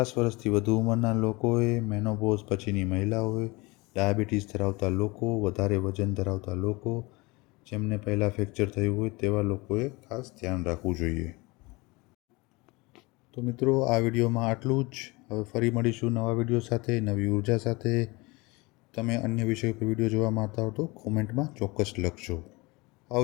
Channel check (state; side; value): quieter; right; 24.6 dB